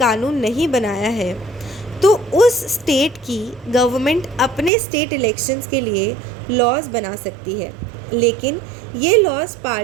कानून नहीं बनाया है, तो उस स्टेट की गवर्नमेंट अपने स्टेट इलेक्शंस के लिए लॉज बना सकती है, लेकिन ये लॉज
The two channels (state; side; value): drops out; left; at 4.7 s